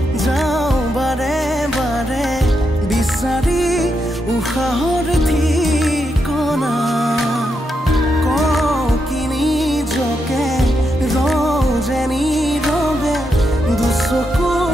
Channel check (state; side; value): normal; both; correlation 0.83